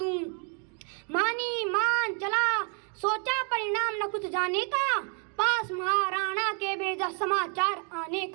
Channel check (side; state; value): left; quieter; 39.8 dB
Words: मानी मान चला सोचा परिणाम न कुछ जाने का, पास महाराणा के भेजा समाचार आने